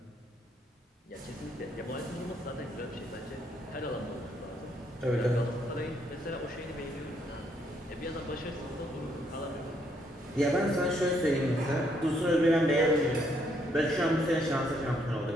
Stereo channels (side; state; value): both; normal; correlation 0.72